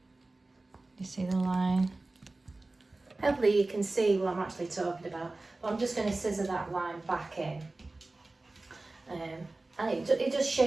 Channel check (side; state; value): left; quieter; 3.1 dB